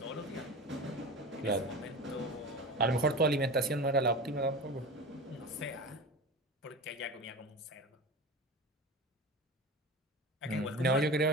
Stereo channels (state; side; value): normal; both; correlation 0.30